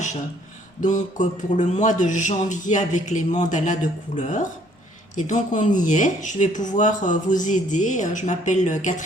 pour le mois de janvier avec les mandalas de couleur. Et donc on y est, je vais pouvoir vous aider. Je m'appelle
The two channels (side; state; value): both; normal; correlation 0.62